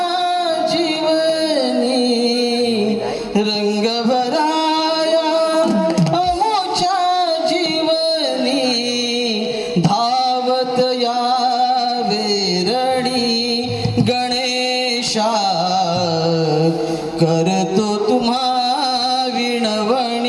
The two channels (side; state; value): both; identical; correlation 1.00